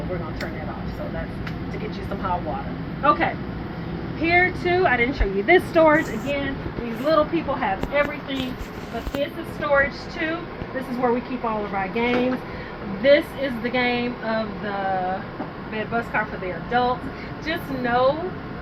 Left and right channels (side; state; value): both; identical; correlation 1.00